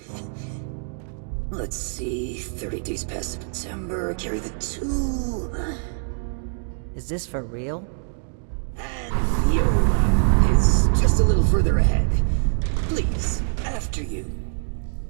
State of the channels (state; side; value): silent; left; digital silence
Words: Let's see, 30 days past September, carry the 2. Is this for real? And Viola is just a little further ahead. Please, after you.